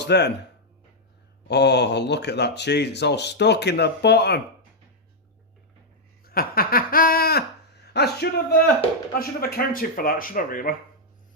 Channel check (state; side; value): normal; both; correlation -0.03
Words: then, oh, look at that cheese. It's all stuck in the bottom. I should have accounted for that, should I really?